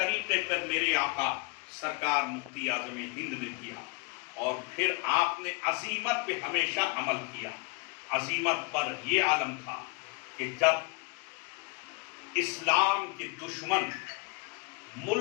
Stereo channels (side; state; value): right; quieter; 28.8 dB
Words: پر میرے آقا سرکار مفتی اعظم ہند نے دیا، اور پھر آپ نے عزیمت پہ ہمیشہ عمل کیا۔ عزیمت پر یہ عالم تھا کہ جب اسلام کے دشمن